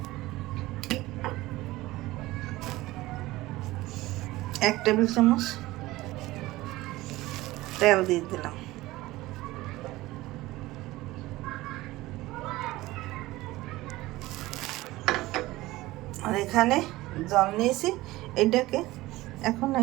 1 টেবিল চামচ তেল দিয়ে দিলাম, আর এখানে জল নিয়েছি। এটাকে এখন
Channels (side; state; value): left; quieter; 18.4 dB